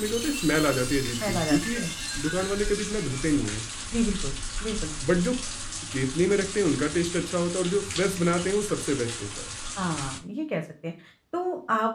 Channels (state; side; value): identical; both; correlation 1.00